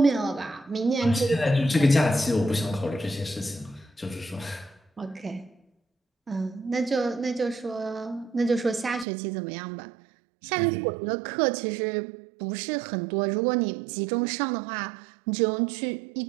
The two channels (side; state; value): left; drops out; at 9.1 s